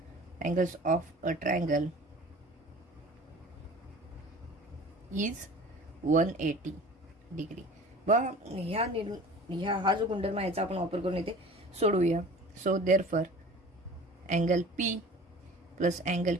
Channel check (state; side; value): normal; both; correlation 0.43